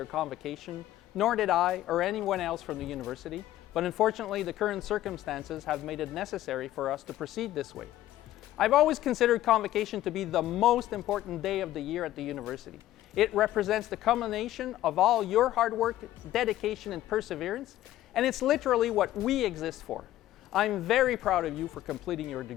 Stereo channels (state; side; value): quieter; right; 14.1 dB